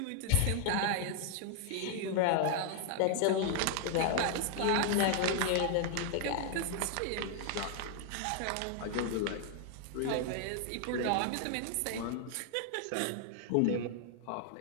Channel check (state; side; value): different; both; correlation 0.00